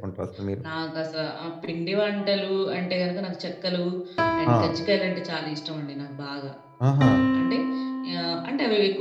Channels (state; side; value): identical; both; correlation 1.00